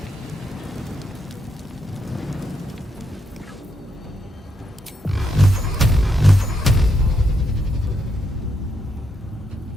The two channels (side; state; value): both; normal; correlation 0.79